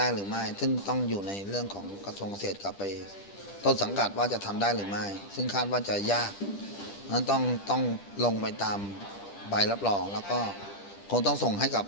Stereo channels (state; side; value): late; right; 10 ms